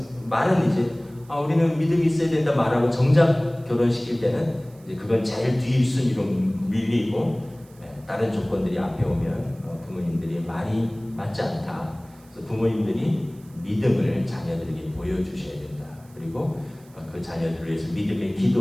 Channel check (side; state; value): right; noise; hiss, 28 dB below the sound